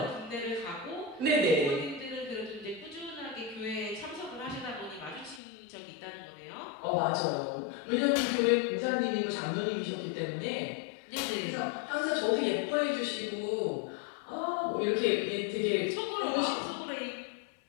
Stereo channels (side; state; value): right; drops out; at 5.4 s